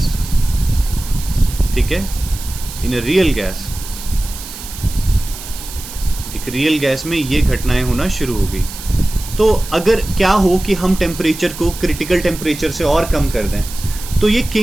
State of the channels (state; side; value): noise; right; hiss, 12 dB below the sound